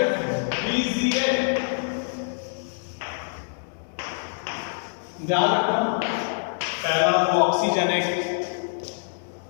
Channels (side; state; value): right; silent; digital silence